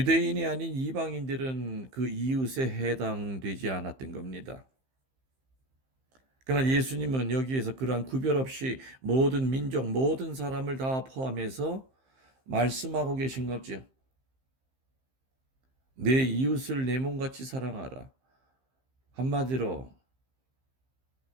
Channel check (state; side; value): late; left; 15 ms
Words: 아닌 이방인들은 그 이웃에 해당되지 않았던 겁니다. 그러나 예수님은 여기에서 그러한 구별 없이 모든 민족, 모든 사람을 다 포함해서 말씀하고 계신 거죠. 내 이웃을 내 몸같이 사랑하라. 한마디로